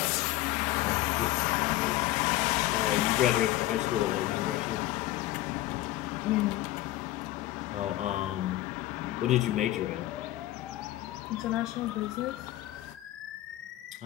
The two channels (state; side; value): quieter; right; 16.0 dB